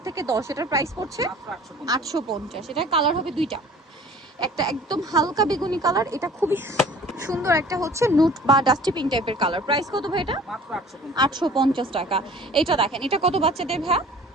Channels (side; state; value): both; normal; correlation 0.48